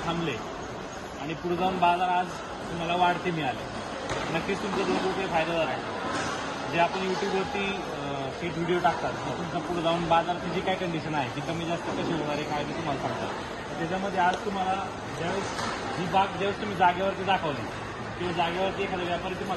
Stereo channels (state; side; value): identical; both; correlation 1.00